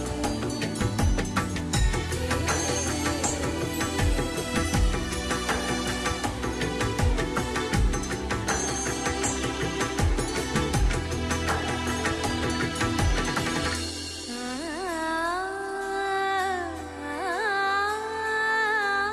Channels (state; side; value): identical; both; correlation 1.00